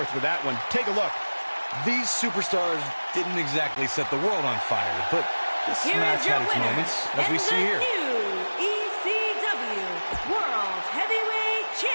with that one. Take a look. These superstars didn't exactly set the world on fire, but this match had its moments, as we see here. New ECW World Heavyweight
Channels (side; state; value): both; inverted; correlation -1.00